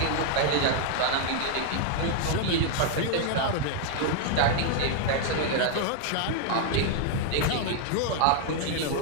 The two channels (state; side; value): different; both; correlation 0.00